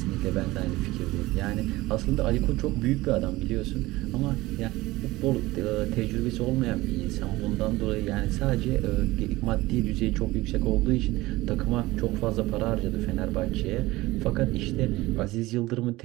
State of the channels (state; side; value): quieter; left; 19.1 dB